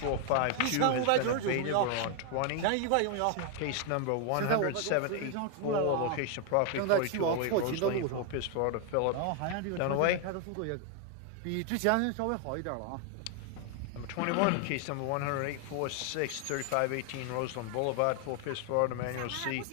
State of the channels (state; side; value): different; both; correlation 0.01